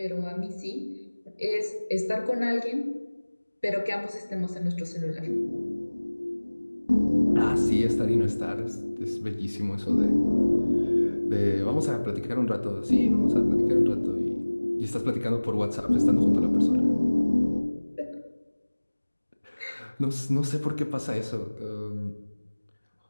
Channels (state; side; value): inverted; both; correlation -1.00